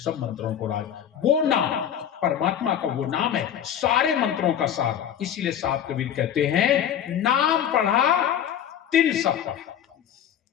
मंत्रों को राज। वो नाम परमात्मा का वो नाम है सारे मंत्रों का सार। इसीलिए साहब कबीर कहते हैं नाम पढ़ा तिन सब पढ़ा।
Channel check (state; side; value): quieter; right; 9.6 dB